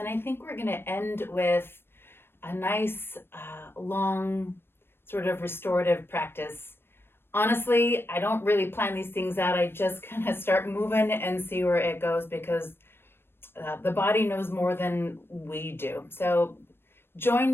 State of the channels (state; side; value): late; right; 0.11 ms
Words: I think we're going to end with a nice, long, sort of restorative practice. Honestly, I don't really plan these things out. I just kind of start moving and see where it goes because the body knows more than we do. So join